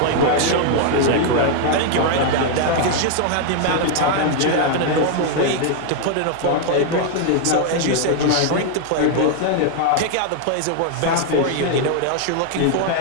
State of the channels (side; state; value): both; different; correlation 0.00